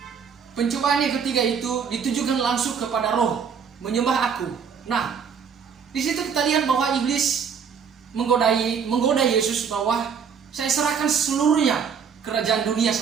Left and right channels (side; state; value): left; quieter; 6.7 dB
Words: Pencobaan yang ketiga itu ditujukan langsung kepada roh, menyembah aku. Nah, di situ kita lihat bahwa iblis menggoda Yesus bahwa saya serahkan seluruhnya kerajaan dunia